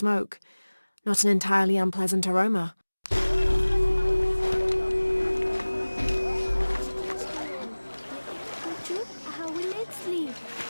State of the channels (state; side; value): inverted; both; correlation -1.00